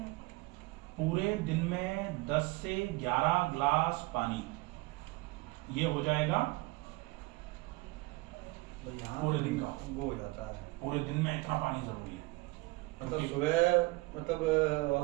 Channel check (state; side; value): quieter; left; 22.4 dB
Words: पूरे दिन में 10 से 11 ग्लास पानी, ये हो जाएगा और यहाँ पूरे दिन का। वो हो जाता है। पूरे दिन में इतना पानी जरूरी है। मतलब क्योंकि- सुबह मतलब